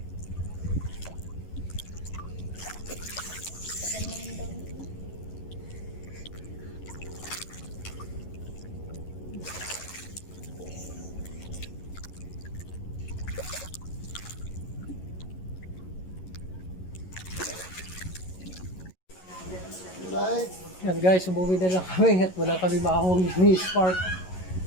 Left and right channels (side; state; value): right; late; 11 ms